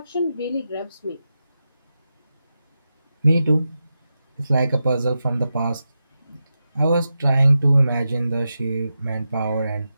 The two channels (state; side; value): inverted; both; correlation -0.90